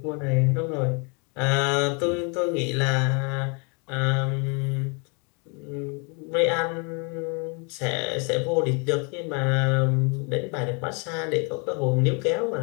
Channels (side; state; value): right; quieter; 34.1 dB